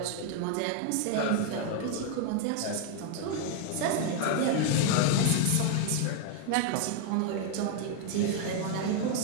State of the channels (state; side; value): different; both; correlation 0.00